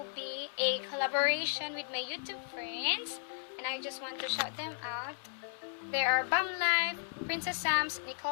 be a collaboration with my YouTube friends. And I just want to shout them out. They are Bam Life, Princess Sams,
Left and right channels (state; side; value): silent; right; 55 dB below the other